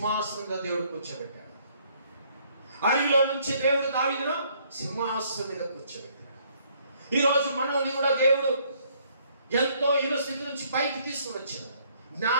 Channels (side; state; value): both; inverted; correlation -0.65